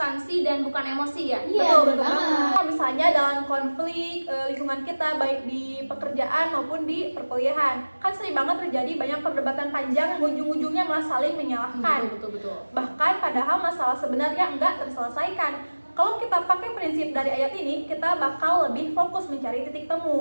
dan bukan emosi ya? Iya, Betul, betul betul banget. banget. Misalnya dalam konflik lingkungan kita baik di pekerjaan maupun di perkuliahan, kan sering banget terjadi banyak perdebatan panjang yang ujung-ujungnya malah saling menyalahkan. Betul. Bahkan padahal masalah sebenarnya enggak terselesaikan. Kalau kita pakai prinsip dari ayat ini, kita bakal lebih fokus mencari titik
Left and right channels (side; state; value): both; inverted; correlation -1.00